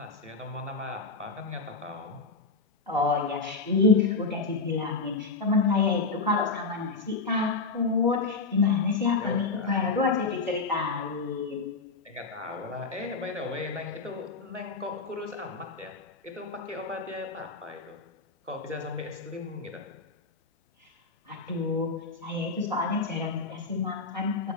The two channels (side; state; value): right; quieter; 4.0 dB